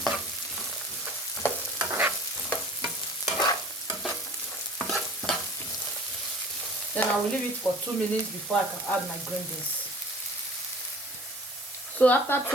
Then I will leave it for 2 minutes before I can add my green beans. So after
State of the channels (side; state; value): both; normal; correlation 0.46